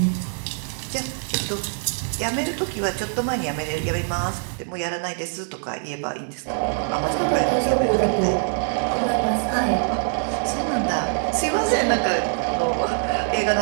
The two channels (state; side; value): silent; left; digital silence